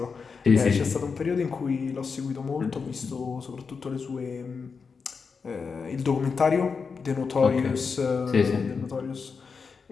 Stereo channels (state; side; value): quieter; right; 5.3 dB